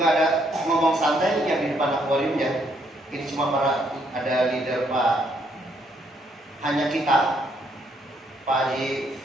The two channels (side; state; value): both; normal; correlation 0.71